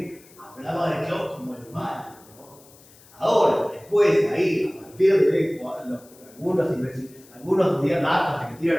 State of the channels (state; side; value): noise; left; hiss, 25 dB below the sound